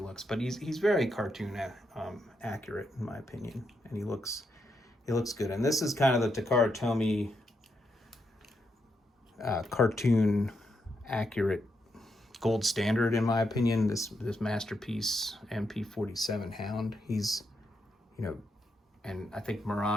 but he's very cartoon accurate in my opinion, and he looks good. And this is kind of the Takara Tomy cartoon accurate gold standard in my opinion. This masterpiece MP-47 Hound, he's and I think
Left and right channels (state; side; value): normal; both; correlation 0.82